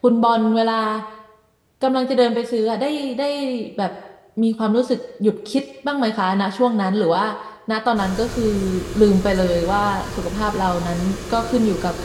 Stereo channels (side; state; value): both; identical; correlation 1.00